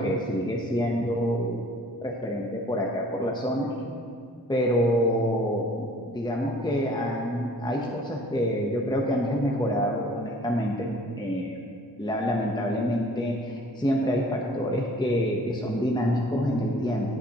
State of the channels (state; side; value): normal; both; correlation 0.52